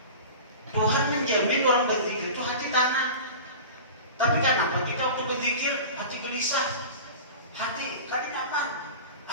Tuhan menjamin orang berzikir itu hati tenang. Tapi kenapa kita waktu berzikir hati gelisah, hati kan nyaman,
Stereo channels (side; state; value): both; inverted; correlation -0.34